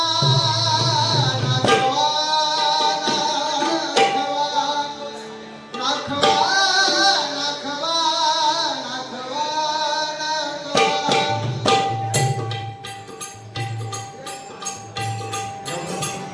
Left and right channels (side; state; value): both; identical; correlation 1.00